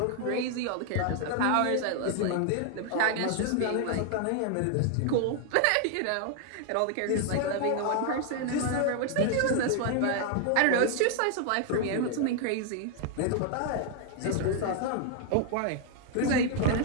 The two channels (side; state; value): both; different; correlation 0.00